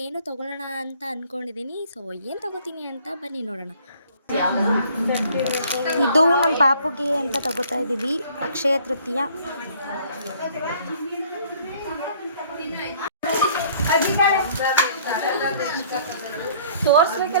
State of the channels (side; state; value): both; inverted; correlation -0.58